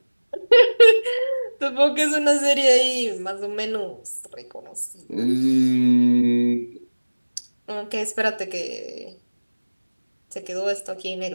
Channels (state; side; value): inverted; both; correlation -1.00